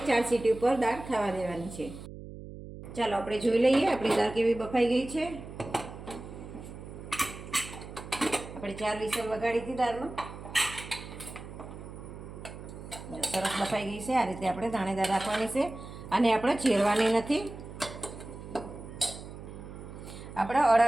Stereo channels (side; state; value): right; noise; hum, 13 dB below the sound